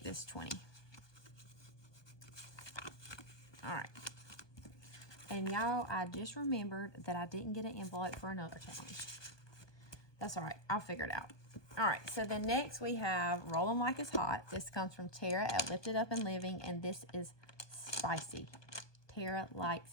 this 20. All right. And y'all, I just remembered that I didn't get an envelope for another challenge. That's all right. I'll figure it out. All right. So then next we have Roll 'em Like It's Hot. This comes from Tara at Lifted Up and Living, and this is spicy. Tara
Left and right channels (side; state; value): right; late; 1.2 ms